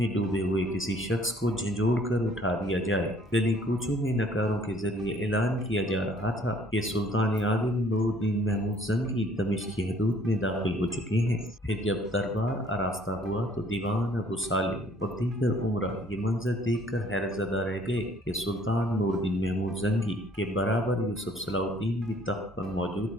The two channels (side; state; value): both; normal; correlation 0.59